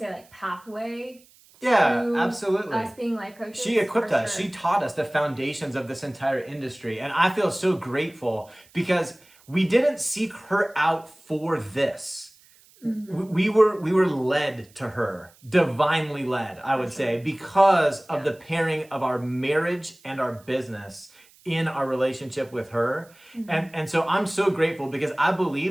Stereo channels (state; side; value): noise; right; hiss, 28 dB below the sound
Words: like pathway? Yeah, absolutely. Us being life coaches. She equipped us. Sure. She taught us the foundations of this entire industry. And I feel so grateful because we didn't seek her out for this. Mm-hmm. We were led to her, divinely led, I would say, because of the pairing of our marriage and our business in our relationship with her. And so I'm so grateful because I